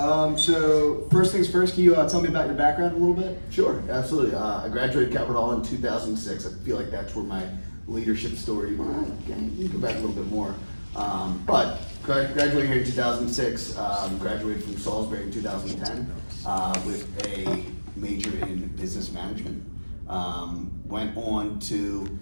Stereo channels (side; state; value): both; inverted; correlation -1.00